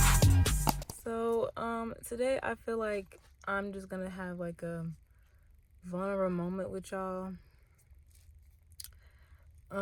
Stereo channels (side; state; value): both; identical; correlation 1.00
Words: Today I feel like I'm just gonna have like a vulnerable moment with y'all.